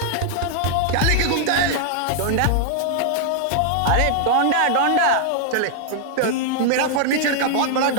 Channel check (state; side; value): different; both; correlation -0.01